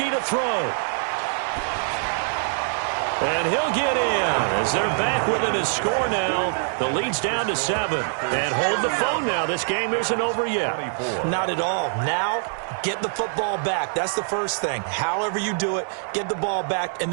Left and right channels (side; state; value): left; silent; 63 dB below the other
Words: to throw. And he'll get in as they're back within his score now. The lead's down to 7. And hold the phone now. This game isn't over yet. Not at all. Now, get the football back. That's the first thing. However you do it, get the ball back and